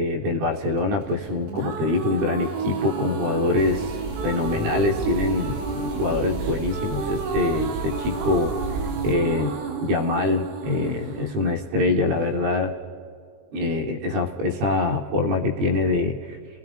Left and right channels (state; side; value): late; left; 20 ms